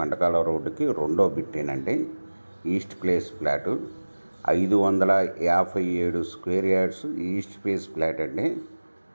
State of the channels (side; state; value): both; inverted; correlation -1.00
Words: రోడ్డుకి రెండో బిట్టేనండి. East face flat 557 square yards east face flat అండి.